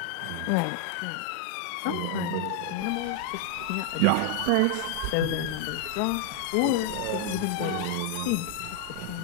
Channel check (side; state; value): both; different; correlation 0.00